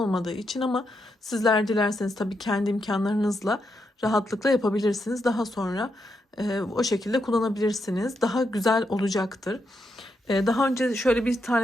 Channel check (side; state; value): both; normal; correlation 0.82